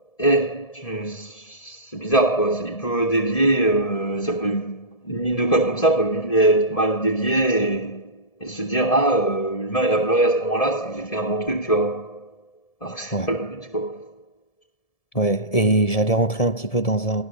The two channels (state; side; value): late; right; 1.7 ms